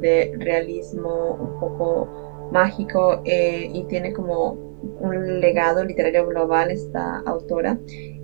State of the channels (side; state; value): left; silent; digital silence